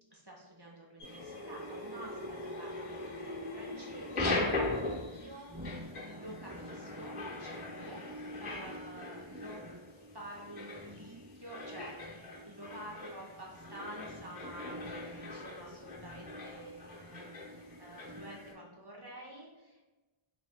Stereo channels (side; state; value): left; late; 1.0 ms